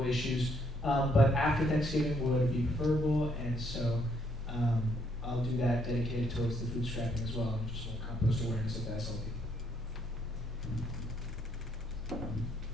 issues. But after Thanksgiving would be preferable, and so I'll do that dedicated towards the food scrapping as well, and just compost awareness of the SLP.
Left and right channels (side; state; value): both; normal; correlation 0.71